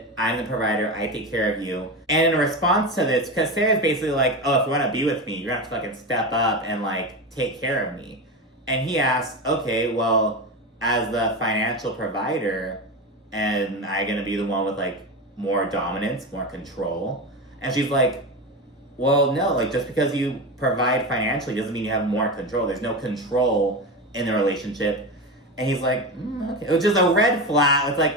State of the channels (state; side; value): normal; both; correlation 0.21